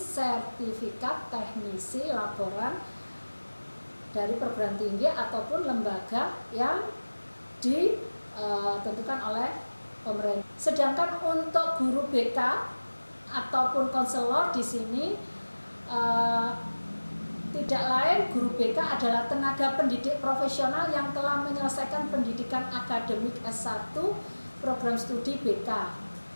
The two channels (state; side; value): inverted; both; correlation -1.00